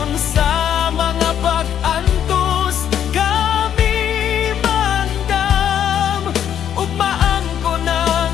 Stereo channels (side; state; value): right; quieter; 9.6 dB